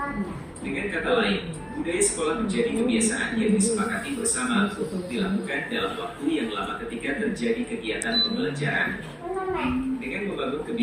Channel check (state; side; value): identical; both; correlation 1.00